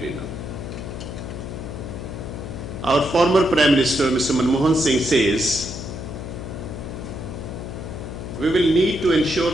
Our former Prime Minister, Mr. Manmohan Singh, says, we will need to ensure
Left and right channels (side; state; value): left; noise; hum, 8 dB below the sound